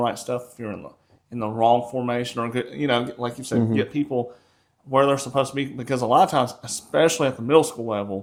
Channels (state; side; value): identical; both; correlation 1.00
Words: stuff if you're in the wrong formation or good, like you said, Mhm. get people where they're supposed to be. Because a lot of times, especially at the middle school